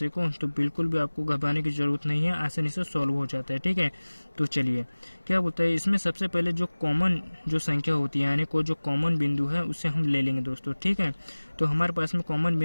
को, तो बिल्कुल भी आपको घबराने की जरूरत नहीं है, आसानी से सॉल्व हो जाता है, ठीक है। तो चलिए क्या बोलता है इसमें, सबसे पहले जो कॉमन जो संख्या होती है यानी कोई जो कॉमन बिंदु है उसे हम ले लेंगे दोस्तों, ठीक है। तो हमारे पास में कॉमन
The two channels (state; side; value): inverted; both; correlation -1.00